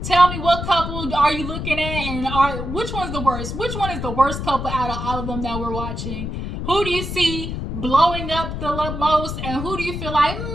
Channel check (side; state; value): left; noise; rumble, 5 dB below the sound